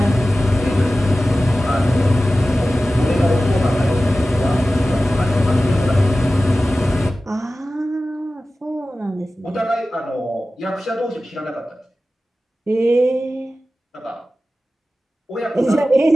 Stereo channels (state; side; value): normal; both; correlation 0.95